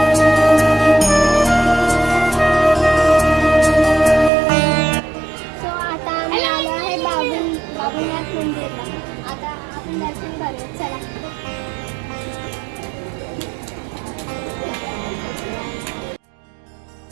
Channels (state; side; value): drops out; left; at 4.3 s